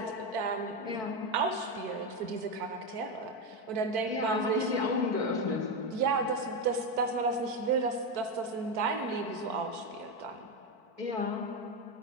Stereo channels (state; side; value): late; left; 4.5 ms